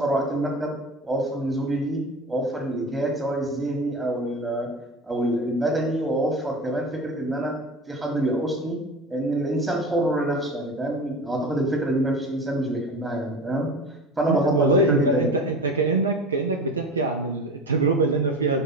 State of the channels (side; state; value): both; normal; correlation 0.32